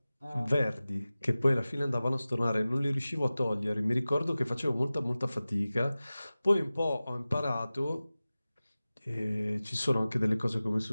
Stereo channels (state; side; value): inverted; both; correlation -0.97